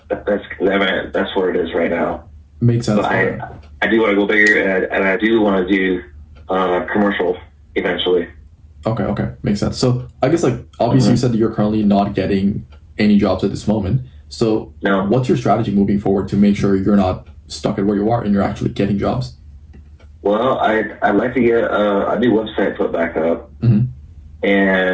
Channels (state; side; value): identical; both; correlation 1.00